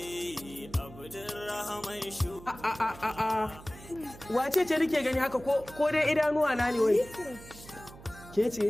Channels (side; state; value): right; noise; hum, 18 dB below the sound